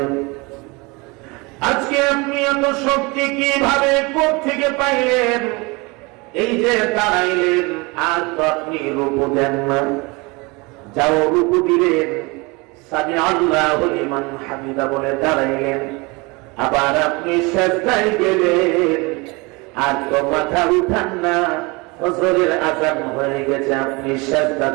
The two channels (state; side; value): quieter; left; 26.3 dB